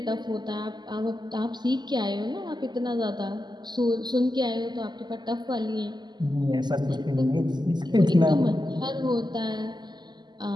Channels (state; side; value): late; left; 0.21 ms